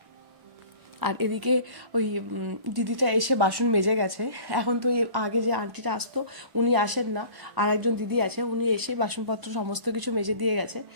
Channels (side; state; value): left; late; 1.1 ms